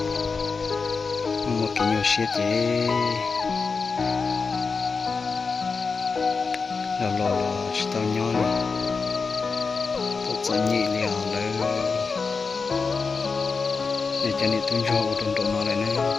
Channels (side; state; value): right; quieter; 4.8 dB